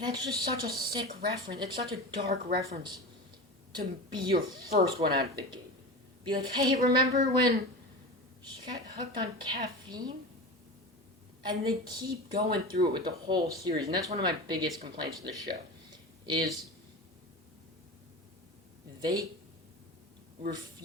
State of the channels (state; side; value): normal; both; correlation 0.28